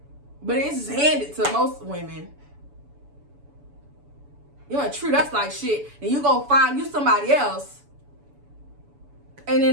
But it's handed to most women. You want to treat us like shit, and you go find you somebody else, and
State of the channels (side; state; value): left; late; 7.0 ms